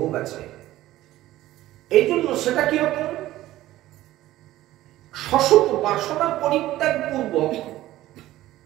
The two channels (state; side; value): quieter; left; 15.3 dB